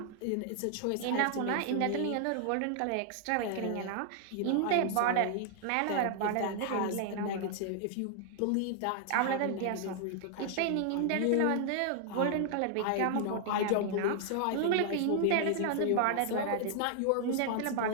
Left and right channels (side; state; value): both; different; correlation 0.00